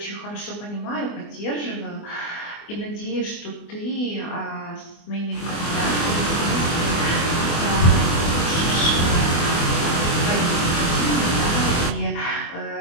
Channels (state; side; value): late; right; 24 ms